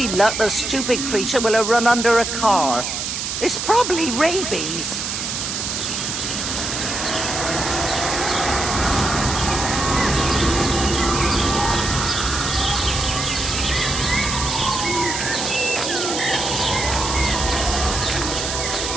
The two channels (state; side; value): noise; right; hiss, 3 dB below the sound